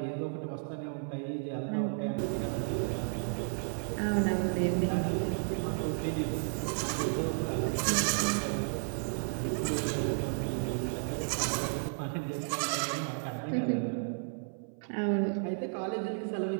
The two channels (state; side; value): silent; left; 56 dB below the other